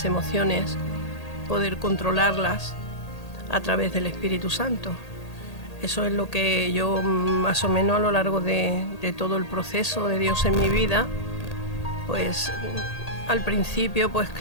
emociones, poder controlarlas a través del Espíritu Santo. Eso es lo que yo, más o menos a lo largo de todo el proceso de Dios en mi vida, pues al principio, pues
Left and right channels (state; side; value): late; right; 1.8 ms